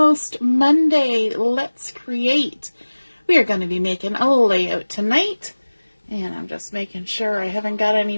Monday. Let's create. We are going to be making a layout tonight. And I'm just making sure I haven't got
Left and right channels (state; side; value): inverted; both; correlation -1.00